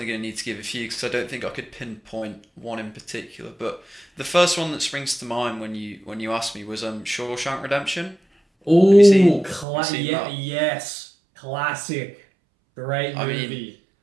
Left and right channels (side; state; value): left; drops out; at 9.7 s